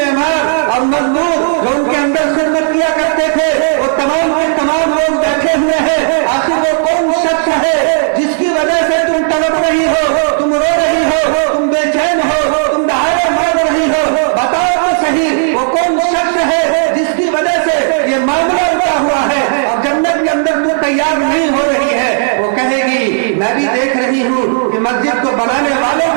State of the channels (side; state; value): left; silent; digital silence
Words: और मजदूर जो उनके अंदर खिदमत किया करते थे, वो तमाम के तमाम लोग बैठे हुए हैं। आखिर वो कौन शख्स है जिसकी वजह से तुम तड़प रही हो, तुम रो रही हो, तुम बेचैन हो, तुम दहाड़े मार रही हो, बताओ तो सही वो कौन शख्स है जिसकी वजह से ये मामला उठा हुआ है और जन्नत के अंदर तू तैयार नहीं हो रही है। वो कहेगी मैं भी देख रही हूँ कि मस्जिद को बनाने वाले